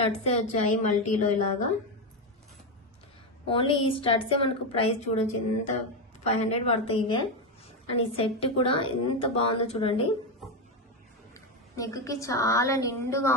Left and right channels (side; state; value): both; normal; correlation 0.09